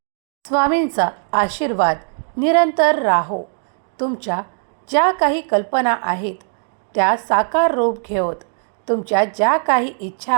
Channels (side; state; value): left; silent; 56 dB below the other